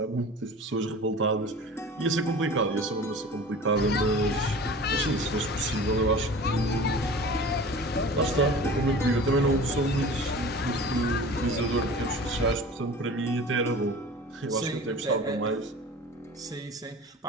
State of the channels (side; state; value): both; normal; correlation 0.39